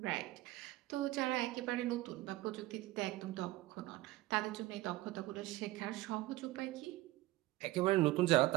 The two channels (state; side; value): quieter; left; 18.0 dB